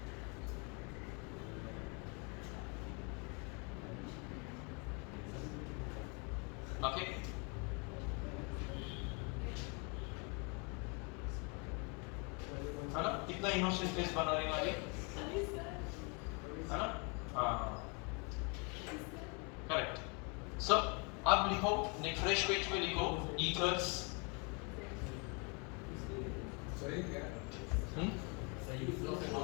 Okay. है ना? कितना इनोसेंट फेस बना रही हमारी, है ना? हाँ, करेक्ट. सो अब लिखो, फ्रेश पेज पे लिखो ethers. सही क्या? सही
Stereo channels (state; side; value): quieter; right; 33.4 dB